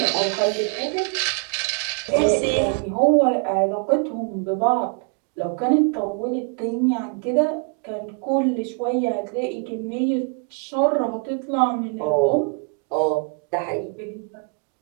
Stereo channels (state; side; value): quieter; left; 40.0 dB